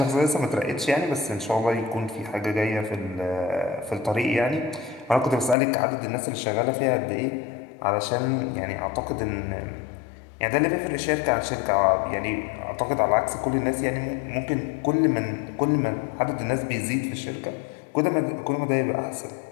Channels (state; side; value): drops out; right; at 5.6 s